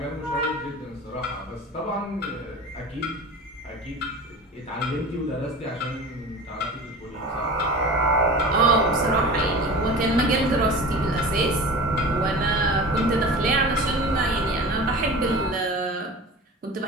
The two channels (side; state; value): both; normal; correlation 0.35